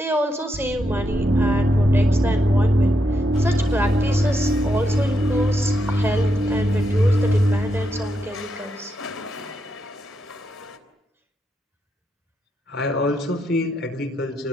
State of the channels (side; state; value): both; normal; correlation 0.82